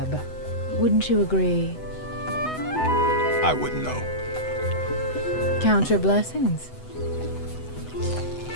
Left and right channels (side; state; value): right; late; 8.0 ms